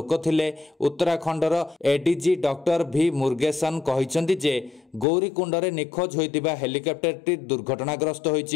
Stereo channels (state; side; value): drops out; right; at 5.1 s